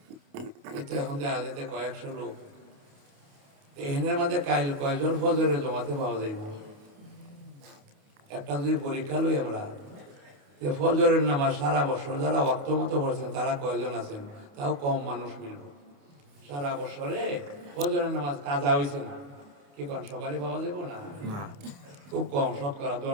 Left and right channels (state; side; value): late; left; 28 ms